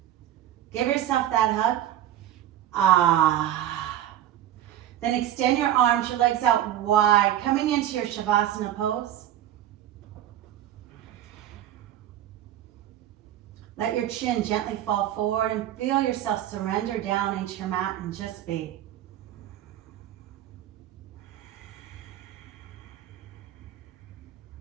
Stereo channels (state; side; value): quieter; left; 11.9 dB